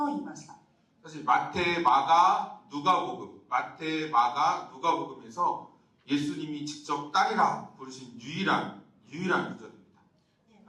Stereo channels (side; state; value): both; identical; correlation 1.00